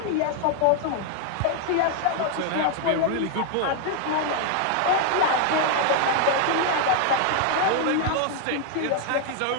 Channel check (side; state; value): both; different; correlation 0.00